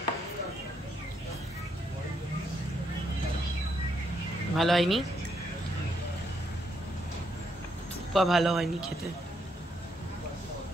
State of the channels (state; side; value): normal; both; correlation 0.76